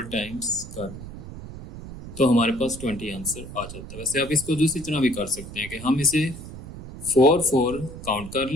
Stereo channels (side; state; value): right; noise; rumble, 12 dB below the sound